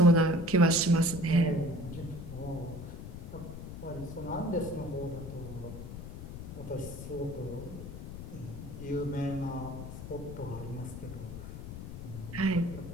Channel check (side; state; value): left; noise; rumble, 9 dB below the sound